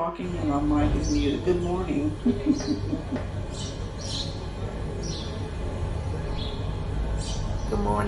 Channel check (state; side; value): identical; both; correlation 1.00